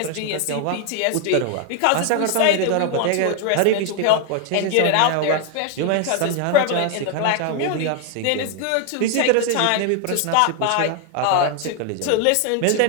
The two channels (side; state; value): both; different; correlation 0.01